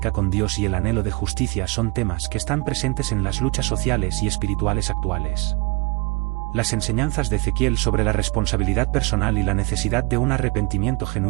con Dios y el anhelo de justicia son temas que están presentes en las luchas sociales y espirituales actuales. Las enseñanzas de Ezequiel sobre la responsabilidad personal y la necesidad de un arrepentimiento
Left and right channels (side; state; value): left; quieter; 28.2 dB